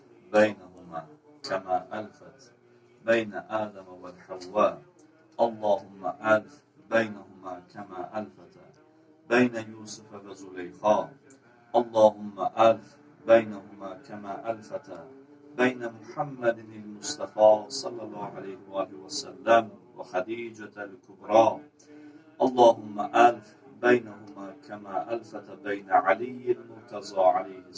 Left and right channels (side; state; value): both; identical; correlation 1.00